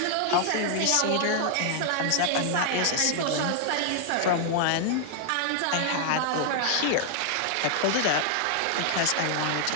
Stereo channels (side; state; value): both; different; correlation 0.00